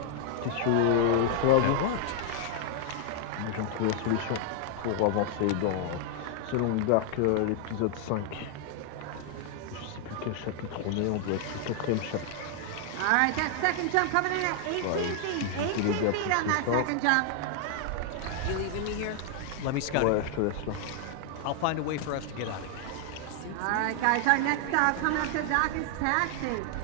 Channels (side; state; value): both; different; correlation 0.00